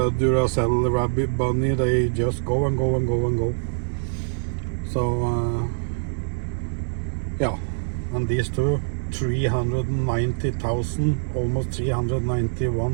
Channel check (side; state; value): left; silent; digital silence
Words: Duracell rabbit bunny. They just go and go and go and go. So yeah, and these two, 390,000, almost